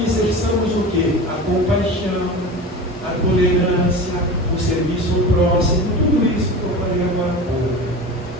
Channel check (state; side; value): normal; both; correlation 0.31